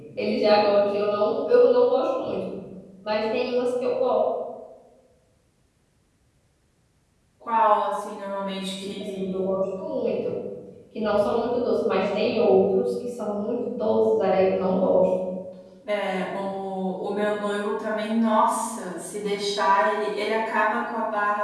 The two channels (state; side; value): identical; both; correlation 1.00